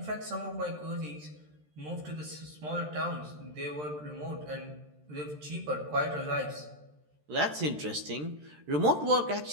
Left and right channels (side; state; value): left; late; 13 ms